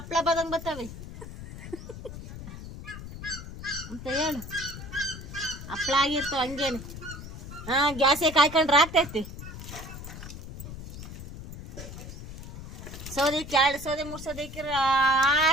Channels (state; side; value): noise; left; rumble, 11 dB below the sound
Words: ಬದಂಗೆ ಬರ್ತವೆ ಅಂತ ಹೇಳು. ಹಪ್ಳ ಆಗಿರ್ತಾವ ಹಂಗೇನು. ಗ್ಯಾಸೇ ಕಾಯ್ಕೊಂಡ್ರೆ ಆಗ್ತೈತಿ. ಸೌದೆ 2 ಸೌದೆ 3 ಸೌದೆ